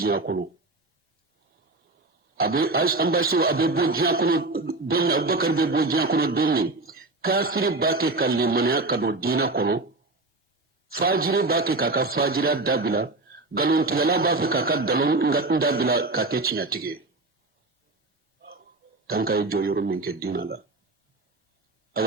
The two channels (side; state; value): left; quieter; 3.2 dB